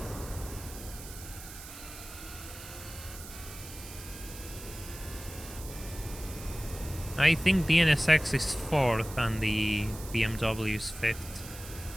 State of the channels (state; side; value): noise; right; hiss, 14 dB below the sound